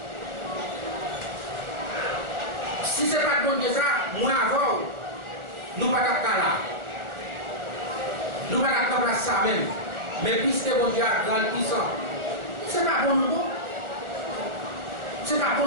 Si ce n'est pas bon Dieu, ça, moi avant, nous ne pouvons pas là. Nous ne pouvons pas faire ça même. Mais puisque mon Dieu a grand puissant, ce n'est pas bon nous. Ce n'est pas bon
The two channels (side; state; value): left; late; 1.4 ms